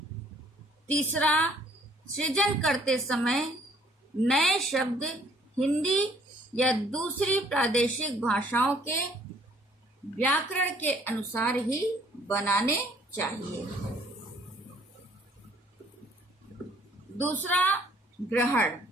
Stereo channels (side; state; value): both; normal; correlation 0.60